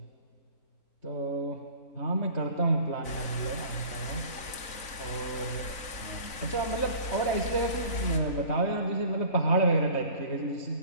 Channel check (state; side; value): late; right; 3.9 ms